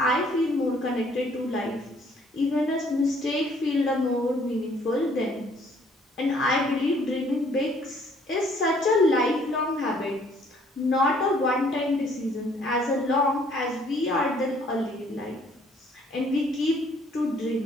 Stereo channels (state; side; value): normal; both; correlation 0.61